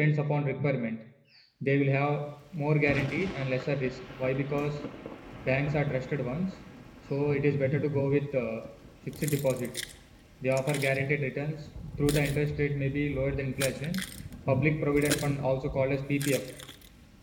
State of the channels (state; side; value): identical; both; correlation 1.00